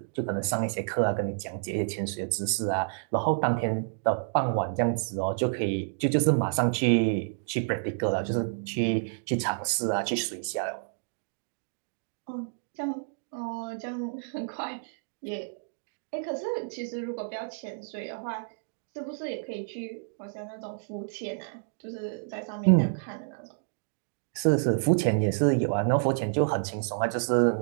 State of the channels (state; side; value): silent; left; digital silence